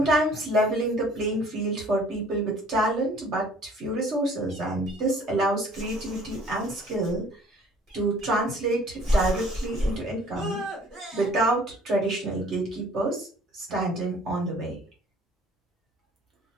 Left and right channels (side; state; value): both; normal; correlation 0.54